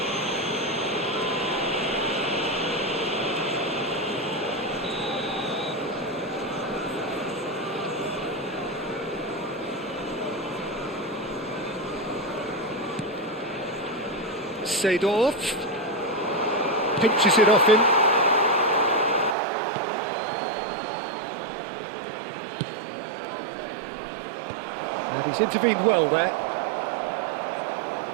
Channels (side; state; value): left; drops out; at 19.4 s